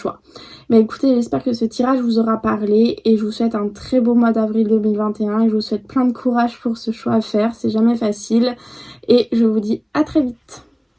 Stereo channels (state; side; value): identical; both; correlation 1.00